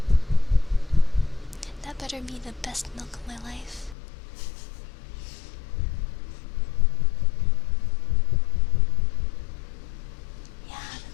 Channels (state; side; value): drops out; right; at 4.0 s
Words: That better be the best milk of my life. Yeah,